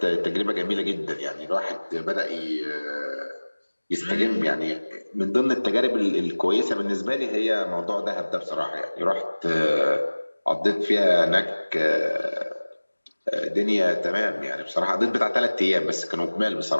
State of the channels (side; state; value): both; inverted; correlation -1.00